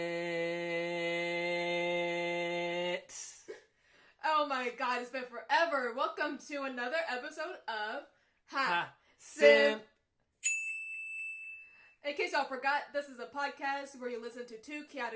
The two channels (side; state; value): both; identical; correlation 1.00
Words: Oh my god, it's been forever. Welcome to another episode of SIMP. In case y'all forgot, this is a podcast where you listen to two